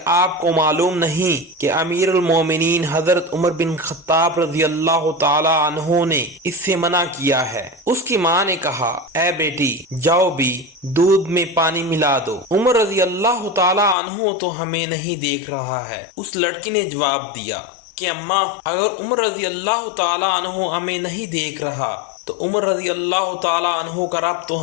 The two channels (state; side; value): drops out; right; at 14.0 s